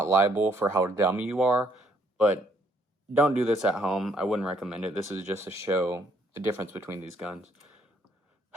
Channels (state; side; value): normal; both; correlation 0.68